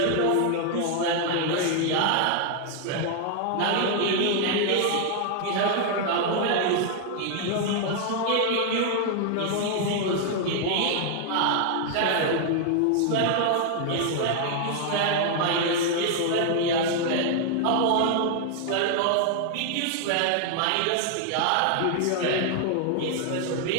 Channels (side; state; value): both; different; correlation 0.00